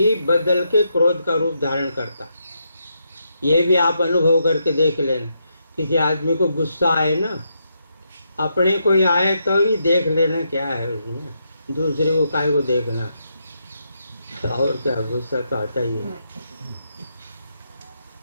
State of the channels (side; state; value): both; inverted; correlation -0.81